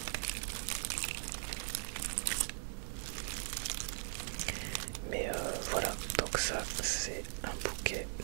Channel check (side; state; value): left; silent; digital silence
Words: Mais voilà, donc ça c'est un bouquet